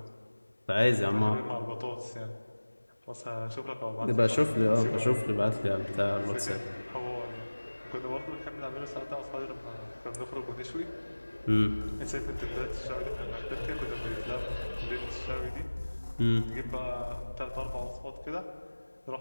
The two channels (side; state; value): both; inverted; correlation -1.00